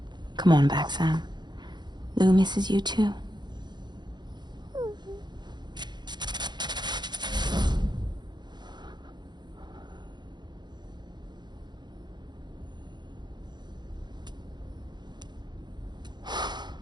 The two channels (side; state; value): left; late; 0.21 ms